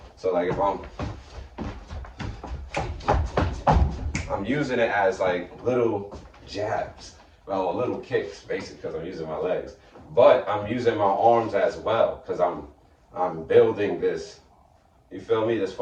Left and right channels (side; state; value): both; identical; correlation 1.00